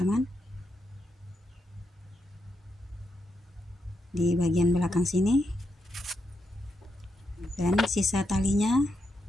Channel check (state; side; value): normal; both; correlation 0.83